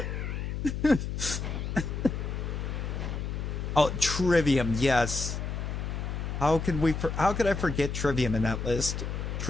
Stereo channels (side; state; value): left; noise; hum, 4 dB below the sound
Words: Oh, Trivium, yes. How could I forget Trivium in that list?